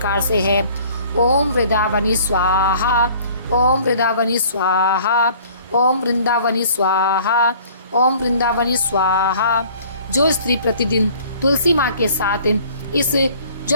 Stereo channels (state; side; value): inverted; both; correlation -0.53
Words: से है, ओम वृंदावनी स्वाहा, ओम वृंदावनी स्वाहा, ओम वृंदावनी स्वाहा, ओम वृंदावनी स्वाहा। जो स्त्री प्रतिदिन तुलसी माँ के साथ इस